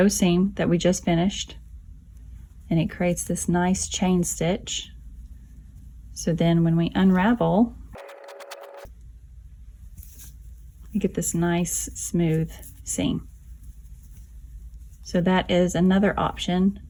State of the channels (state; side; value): identical; both; correlation 1.00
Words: seam that we just finished, and it creates this nice chain stitch. So then when we unravel, we get this nice smooth seam. So that is another option